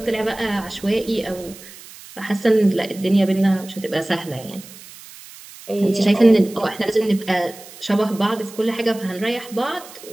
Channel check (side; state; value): right; noise; hiss, 18 dB below the sound